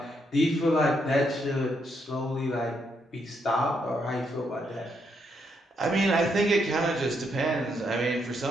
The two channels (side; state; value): both; normal; correlation 0.76